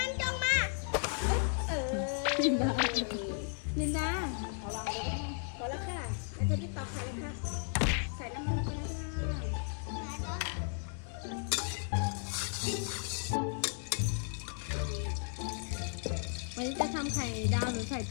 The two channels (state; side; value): silent; right; 55 dB below the other